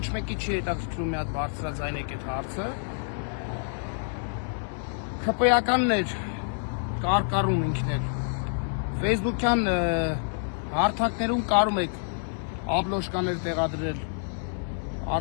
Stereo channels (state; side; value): silent; right; digital silence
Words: մեկի չի հետաքրքրում մի հատ բարձրաձայնեք այդ հարցը։ ԽՊ-ականներ կարկառում ինքներ։ Facebook-յան հարթակներում կարում եք աբլոշկաներ տեղադրել,